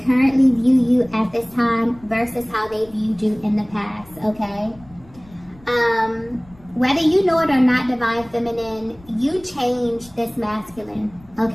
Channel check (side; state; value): left; noise; rumble, 25 dB below the sound